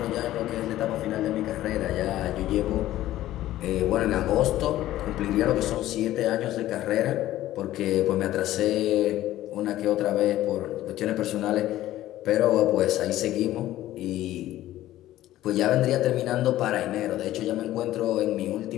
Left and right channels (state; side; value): quieter; right; 14.4 dB